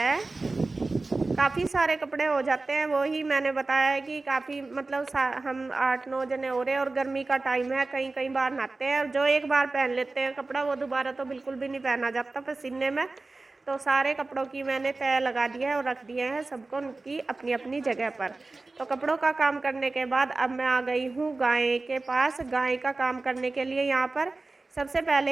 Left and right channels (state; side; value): quieter; left; 3.4 dB